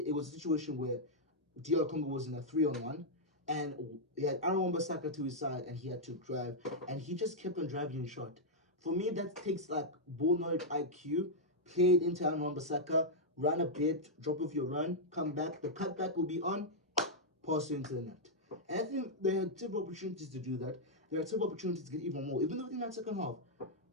was a situation where DR Congo was in a 3-on-1, and he had Aaron Wan-Bissaka to his side, and he had to drive, and he just kept on driving in shot. For me, that takes like ball knowledge IQ, played into Aaron Wan-Bissaka, run a bit, drop off your run, come back, the cutback will be on, pass into the net. And I think they had several opportunities to do that. There are several opportunities to get even more, even though in that second half.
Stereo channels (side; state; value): both; normal; correlation -0.06